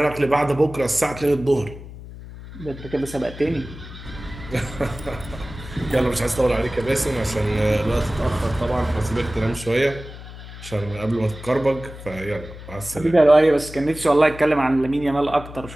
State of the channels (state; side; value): noise; left; hum, 14 dB below the sound